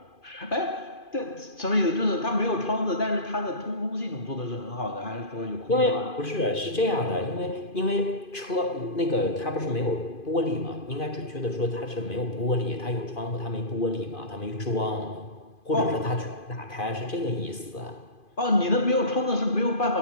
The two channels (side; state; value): right; late; 2.5 ms